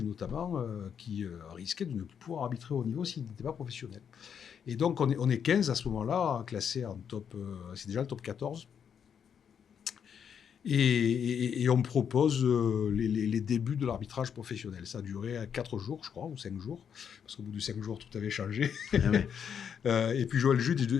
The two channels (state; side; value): quieter; right; 7.7 dB